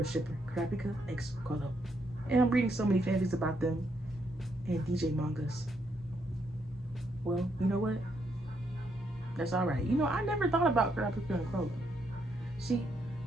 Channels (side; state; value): both; normal; correlation 0.76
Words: shipper, Kurapika x Kolo. And I'm reading so many fanfics about them and DJ mangas. Well, you know what? That's alright. You know, I never thought about Kurapika and Kolo. See,